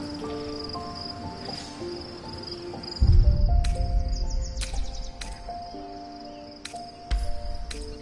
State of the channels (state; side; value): identical; both; correlation 1.00